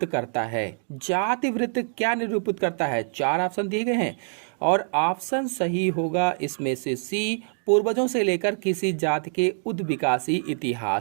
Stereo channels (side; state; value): left; silent; 62 dB below the other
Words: करता है। जाति वृत्त क्या निरूपित करता है? 4 ऑप्शन दिए गए हैं और ऑप्शन सही होगा इसमें से सी, पूर्वजों से लेकर किसी जाति के उद्विकासी